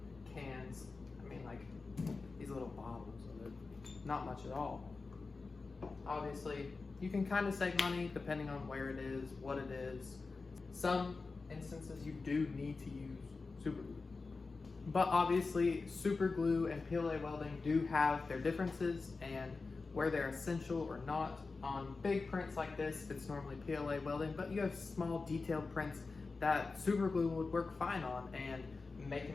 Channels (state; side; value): quieter; right; 4.1 dB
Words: Cans, I mean like these little bottles of it. Not much at all. Obviously, you can kind of save money depending on where it is, what it is. Some instances you do need to use super glue. But obviously, super glue and PLA welding do have their differences and where they're essential or not. On big prints like this, it's normally PLA welding, but you have small detailed prints that super glue would work fine on, and